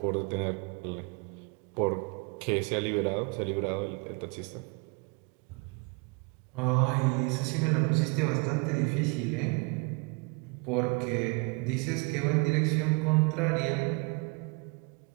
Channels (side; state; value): left; quieter; 30.9 dB